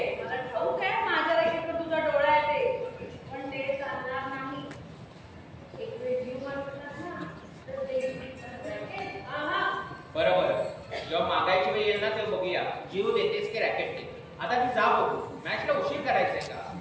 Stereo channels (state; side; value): identical; both; correlation 1.00